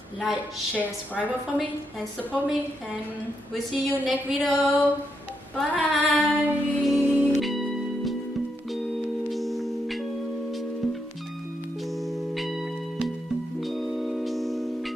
like, share, subscribe for me and support me, and we'll see you next video. Bye.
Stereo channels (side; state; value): both; normal; correlation 0.81